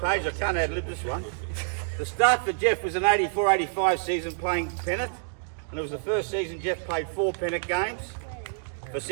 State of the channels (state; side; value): silent; left; digital silence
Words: page, I can't ad-lib this one. The start for Jeff was an 84-85 season playing Pennant, and it was the first season Jeff played 4 Pennant games for